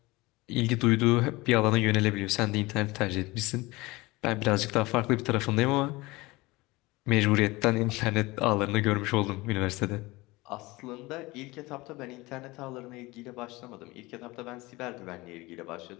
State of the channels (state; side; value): quieter; right; 21.8 dB